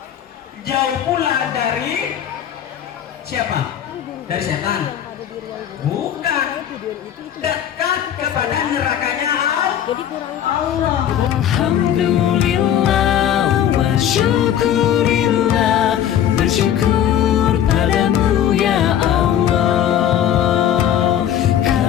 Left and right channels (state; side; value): quieter; right; 10.2 dB